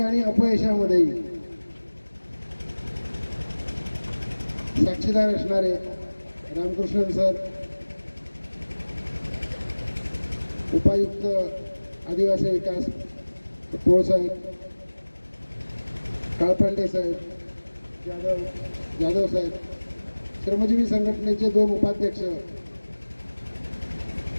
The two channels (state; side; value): inverted; both; correlation -1.00